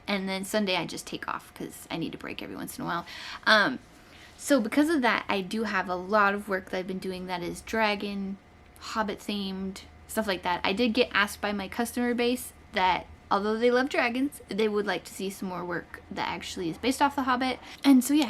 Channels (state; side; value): identical; both; correlation 1.00